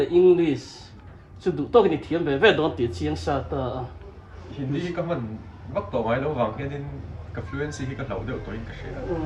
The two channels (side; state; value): both; identical; correlation 1.00